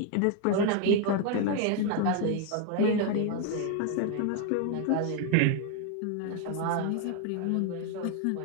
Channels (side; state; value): both; different; correlation 0.00